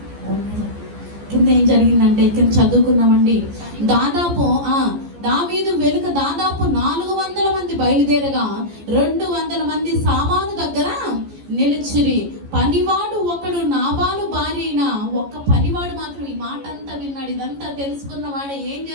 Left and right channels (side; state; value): left; late; 14 ms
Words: కింద ఏం జరిగిందంటే కింద చదువుకున్నామండి. దావీదు వెనుక దాదాపు 400 మంది బయలుదేరగా 200 మంది సామాను దగ్గర నిలిచిరి. పనివాడు ఒకడు నాబాలు భార్య అయిన ఒక్క పనివాడు మాత్రం ఈ మాట అంతా విన్నాడు. ఇదంతా తెలుసుకున్న వాడే ఏం